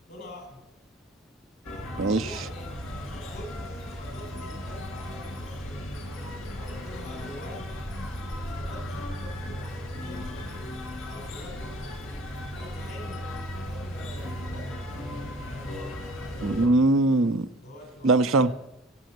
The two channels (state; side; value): normal; both; correlation 0.50